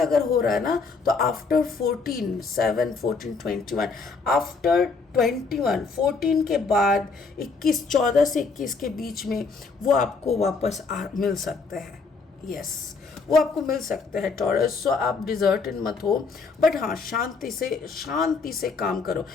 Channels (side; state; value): right; quieter; 4.5 dB